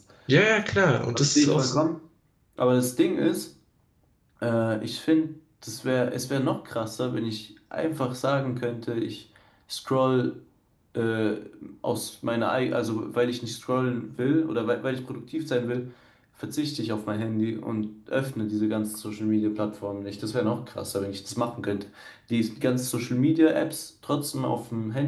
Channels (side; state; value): both; identical; correlation 1.00